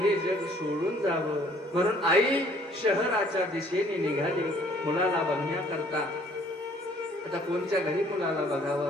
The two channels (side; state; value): both; normal; correlation 0.59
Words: जग सोडून जावं. म्हणून आई शहराच्या दिशेने निघाली मुलाला बघण्याकरता. आता कोणत्या घरी मुलाला